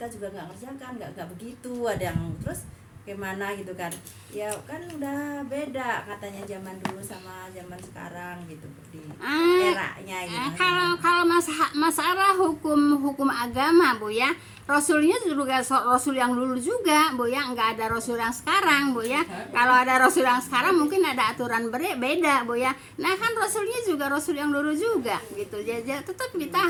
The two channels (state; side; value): identical; both; correlation 1.00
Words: juga enggak kerjakan, enggak begitu. Ada yang terus gimana gitu kan, ya kan udah beda katanya zaman dulu sama zaman sekarang gitu di eranya gitu. Kalau masalah hukum agama Bu ya, Rasulnya juga Rasul yang dulu juga Bu ya, nggak ada Rasul yang sekarang Bu ya. Kalau ada Rasul yang sekarang mungkin ada aturan beda Bu ya. Nah kan Rasulnya juga Rasul yang dulu juga gitu. Jadi tetap kita